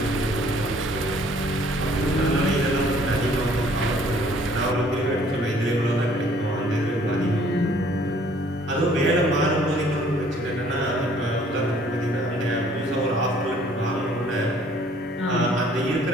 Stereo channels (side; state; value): both; normal; correlation 0.58